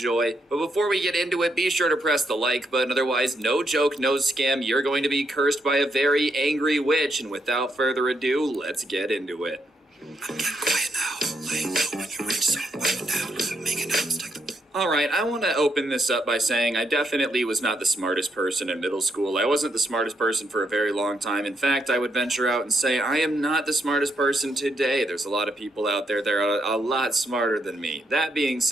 But before we get into it, be sure to press the like button. Otherwise, no joke, no scam, you're going to be cursed by a very angry witch. And without further ado, let's get into it. Get quiet now. Laying low when you reach so down. Make announced like the Alright, I want to open this up by saying I definitely was not the smartest person in middle school. I wasn't the smartest person for a very long time. In fact, I would venture out and say I am not the smartest person today. There's a lot of people out there that are a lot smarter than me. That being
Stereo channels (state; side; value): normal; both; correlation 0.78